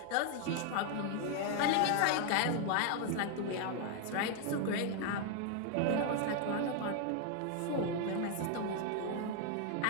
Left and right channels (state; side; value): different; both; correlation 0.00